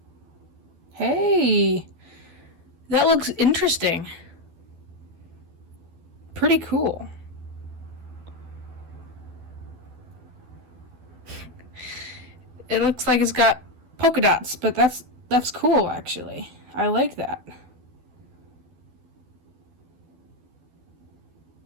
Hey, that looks interesting. Pretty cool. It looks like it's got polka dots, but that's cool actually. I like that.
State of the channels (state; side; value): late; left; 12 ms